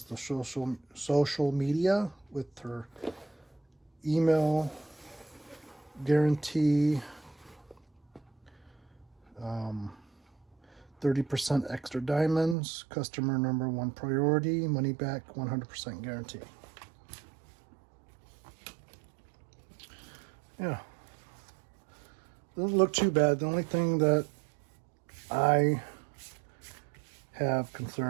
the social media with her email guarantee. 30% extra diamonds, customer number 1 priority, money back 100% guarantee. Yeah, doesn't look too bad. The only thing that I have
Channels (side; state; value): left; drops out; at 12.6 s